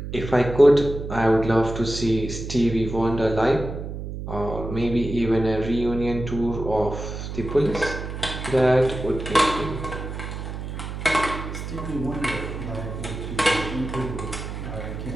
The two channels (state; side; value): noise; right; hum, 7 dB below the sound